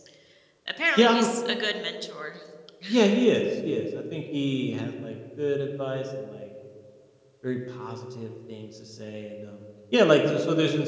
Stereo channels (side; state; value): both; identical; correlation 1.00